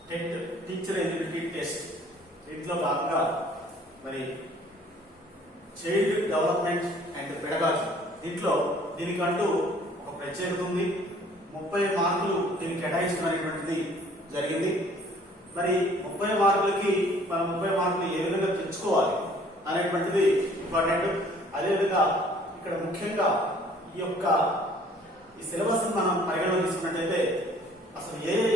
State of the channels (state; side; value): normal; both; correlation 0.56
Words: TET teacher eligibility test దీంట్లో భాగంగా మరి చైల్డ్ డెవలప్మెంట్ అండ్ పెడగాజీ దీనికంటూ ఒక ప్రత్యేకత ఉంది. 30 మార్కులు దీనికి కేటాయించడం అనేటువంటిది జరిగింది. మరి 30 మార్కులకి మనం 30 మార్కులు ఏ విధంగా తెచ్చుకోవాలి అనేటువంటిది ఇంపార్టెంట్. అదేవిధంగా ఇక్కడ ముఖ్యంగా ఈ సిలబస్ మనం పరిగణలో తీసుకున్నట్లయితే అసలు ఏ